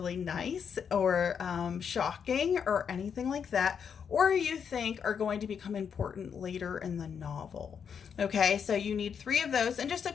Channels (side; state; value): right; quieter; 7.1 dB